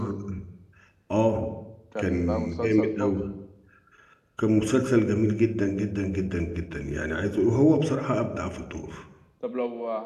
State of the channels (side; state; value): both; identical; correlation 1.00